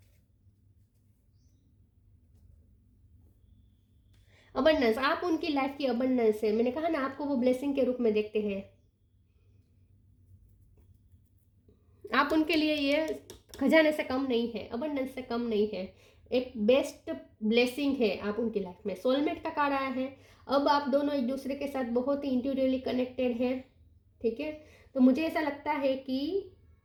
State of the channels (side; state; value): both; identical; correlation 1.00